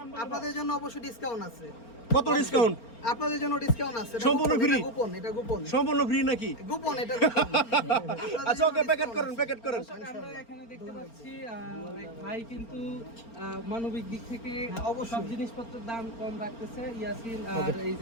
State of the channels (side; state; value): right; late; 4.4 ms